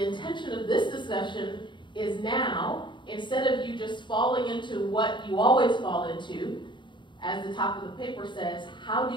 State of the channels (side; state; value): right; late; 0.23 ms